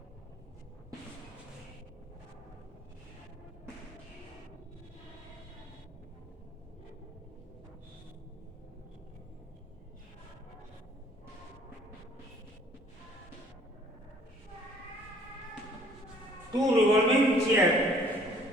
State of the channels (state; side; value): normal; both; correlation 0.57